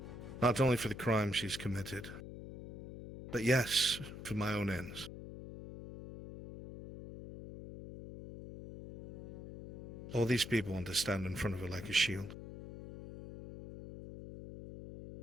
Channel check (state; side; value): noise; left; hum, 12 dB below the sound